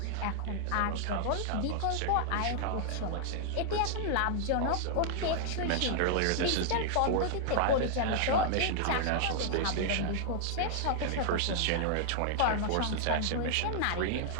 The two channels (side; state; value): both; different; correlation -0.01